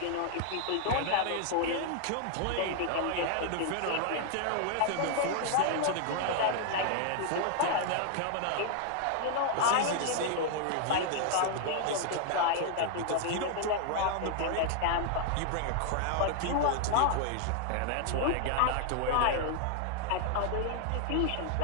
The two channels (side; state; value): both; different; correlation 0.00